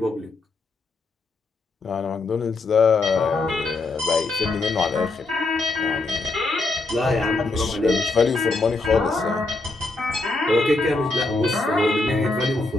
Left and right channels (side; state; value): right; quieter; 3.3 dB